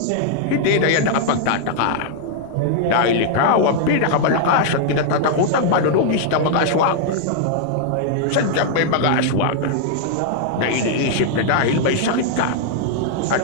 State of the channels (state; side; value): different; both; correlation -0.01